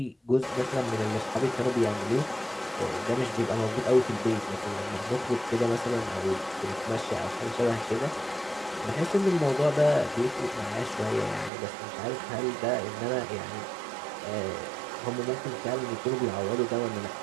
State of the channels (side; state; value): left; drops out; at 11.5 s